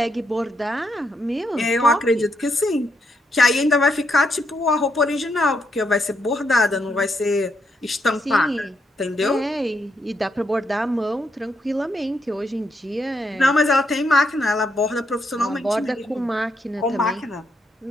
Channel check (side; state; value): both; normal; correlation 0.78